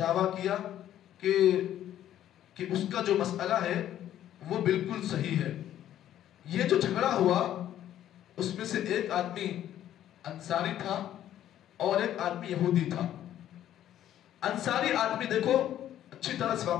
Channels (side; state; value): right; quieter; 11.7 dB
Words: کیا کہ اس کا جو مسئلہ ہے وہ بالکل صحیح ہے۔ یہ جو جھگڑا ہوا اس میں سے ایک آدمی انصاری تھا اور ایک آدمی یہودی تھا۔ انصاری آدمی دیکھو اچھی طرح سے